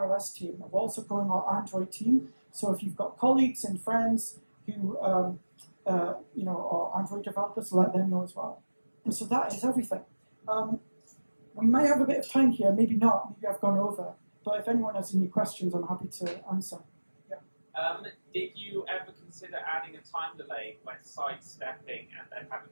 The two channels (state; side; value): inverted; both; correlation -1.00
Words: iOS team. We're also growing our Android team. So if you've got colleagues and friends who are Android developers, let them know as well. And so that is everything. We may have a bit of time here, maybe not, maybe I've gone over. But if anyone has any questions, I'm happy to answer. Yeah. Did you ever consider adding a time delay when sidestepping and then having